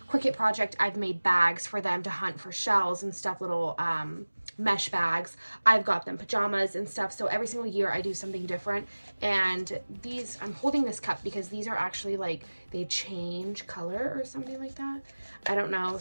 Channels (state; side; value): inverted; both; correlation -1.00